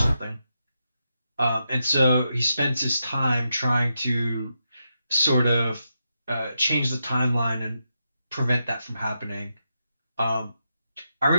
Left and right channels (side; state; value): both; inverted; correlation -0.85